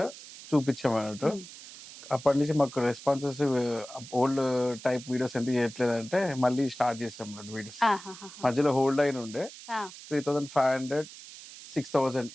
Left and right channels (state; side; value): noise; right; hiss, 16 dB below the sound